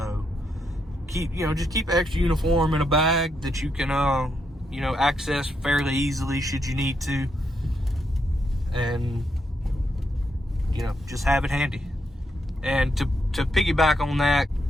just keep extra uniform in a bag that you can access fairly easily should you need to, and just have it handy. And to piggyback on that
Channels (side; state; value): both; normal; correlation 0.80